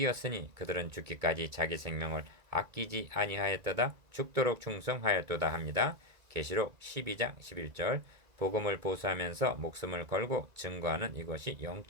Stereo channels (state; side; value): late; left; 2.2 ms